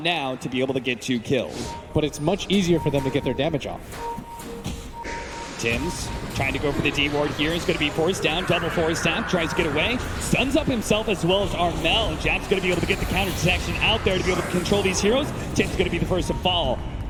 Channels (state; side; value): identical; both; correlation 1.00